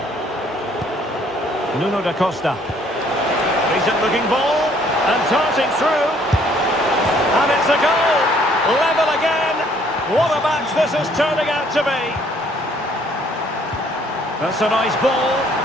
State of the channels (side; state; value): both; normal; correlation 0.62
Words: Nuno da Costa. Decent looking ball. And darting through. And it's a goal. Level again. What a match this is turning out to be. That's a nice ball.